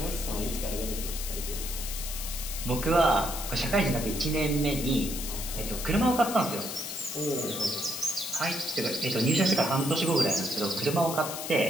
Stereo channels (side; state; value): left; noise; hiss, 6 dB below the sound